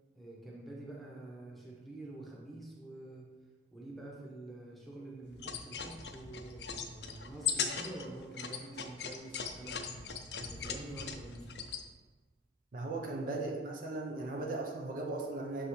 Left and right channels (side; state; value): both; normal; correlation 0.28